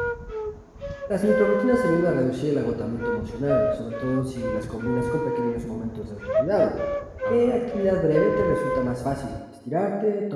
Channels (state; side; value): identical; both; correlation 1.00